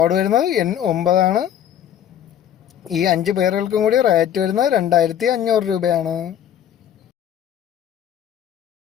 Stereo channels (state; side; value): quieter; right; 9.9 dB